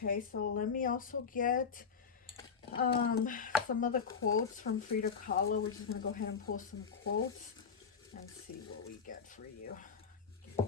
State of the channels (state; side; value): quieter; right; 6.1 dB